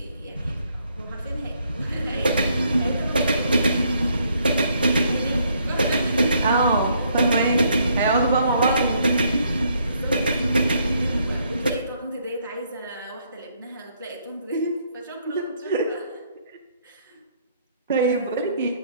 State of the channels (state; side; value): inverted; both; correlation -0.70